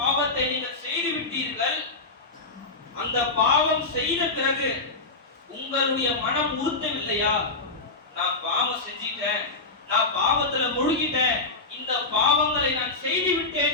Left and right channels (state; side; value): quieter; right; 3.5 dB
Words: நீங்கள் செய்து விட்டீர்கள். அந்த பாவம் செய்த பிறகு உங்களுடைய மனம் உறுத்தவில்லையா? நான் பாவம் செஞ்சிட்டேன், நான் பாவத்துல முழுகிட்டேன், இந்த பாவங்களை நான் செய்து